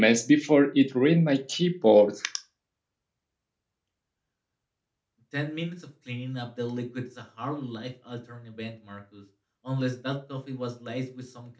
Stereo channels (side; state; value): both; identical; correlation 1.00